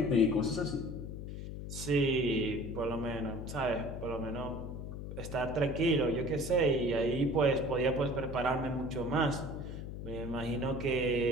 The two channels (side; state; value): left; noise; hum, 8 dB below the sound